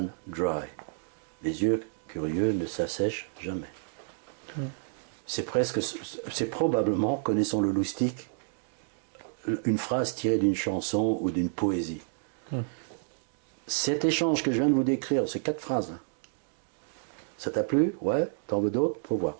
dry. Les yeux curieux ne s'assèchent jamais. C'est probablement, connaissant le loustic, une phrase tirée d'une chanson ou d'une poésie. Cet échange que je viens de vous décrire, c'est 4 phrases. Ça t'a plu? Ouais. T'en veux d'autres? Faut voir.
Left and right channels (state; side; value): silent; left; digital silence